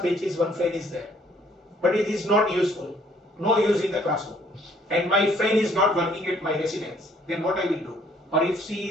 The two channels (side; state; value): both; normal; correlation 0.62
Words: pages, one fan is there, but it is not useful. No use in the classroom, and my fan is not working at my residence. Then what I will do? Or if